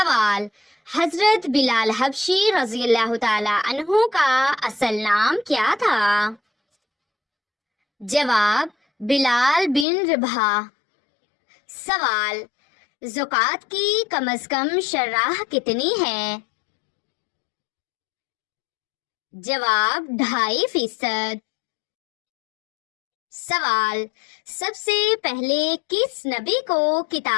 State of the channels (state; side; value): drops out; right; at 9.9 s